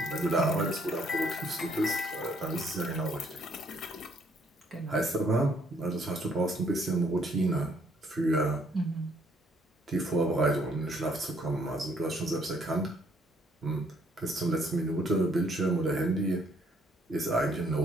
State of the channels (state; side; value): normal; both; correlation 0.66